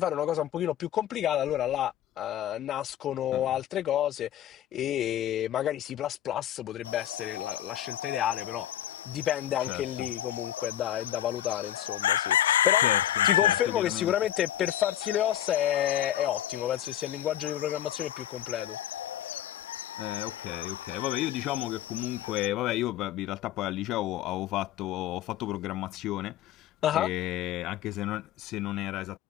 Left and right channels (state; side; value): quieter; right; 11.8 dB